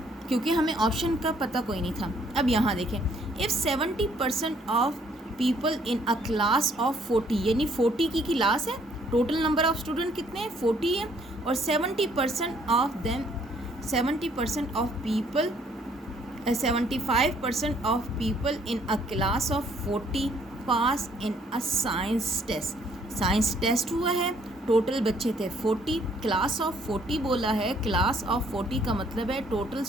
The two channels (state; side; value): normal; both; correlation 0.64